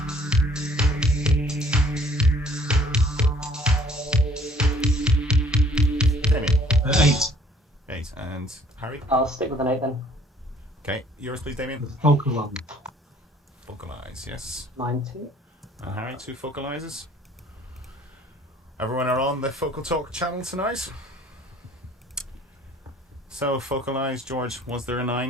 Damien. 8. 8 and Harry. I'll stick with an 8 then. Okay, yours please, Damien. The focal one. Focalize, yes. Mine too. And Harry, 2 focalizes. Everyone are on the Focal Talk channel tonight. So, focalize, George, was there a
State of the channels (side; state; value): both; normal; correlation 0.57